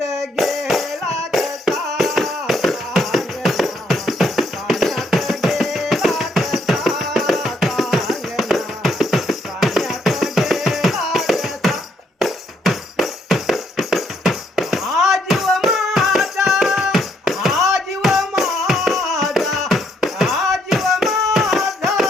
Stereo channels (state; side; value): normal; both; correlation 0.72